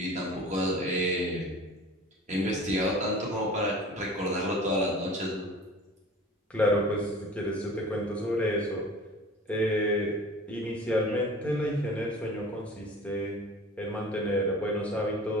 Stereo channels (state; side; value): normal; both; correlation 0.42